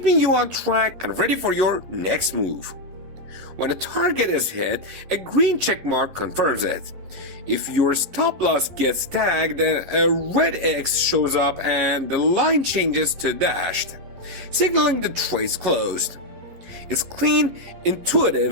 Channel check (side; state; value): left; late; 11 ms